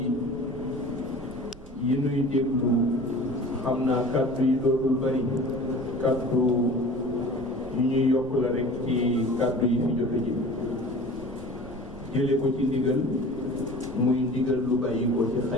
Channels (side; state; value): right; noise; rumble, 17 dB below the sound